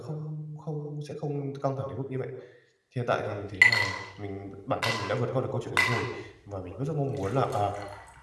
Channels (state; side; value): identical; both; correlation 1.00